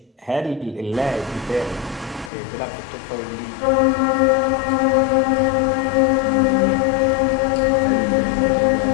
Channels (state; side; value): drops out; right; at 2.3 s